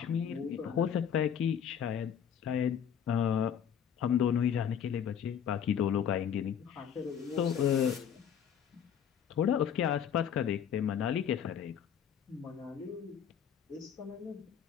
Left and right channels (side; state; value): right; quieter; 8.5 dB